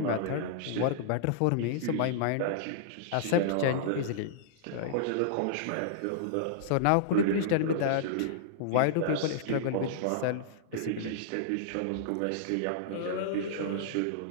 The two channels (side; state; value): both; different; correlation -0.02